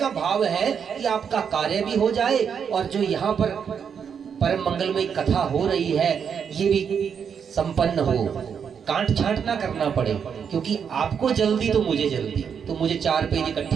भाव है कि आपका कार्य भी हो जाए और जो यहाँ पर परम मंगलमय कथा हो रही है ये भी संपन्न हो, कांट छांट ना करना पड़े, क्योंकि आपको जल्दी तो मुझे जल्दी, तो मुझे 4 पेज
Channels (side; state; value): left; quieter; 7.2 dB